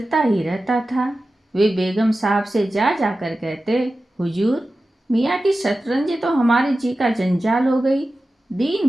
ही रहता था। वे बेगम साहब से जा जाकर कहते, हुजूर, मियाँ की शतरंज तो हमारे जी का जंजाल हो गई। दिन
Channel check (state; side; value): normal; both; correlation 0.94